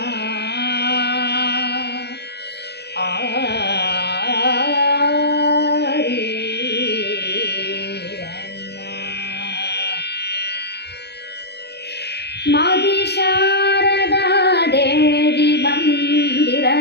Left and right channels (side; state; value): right; late; 0.49 ms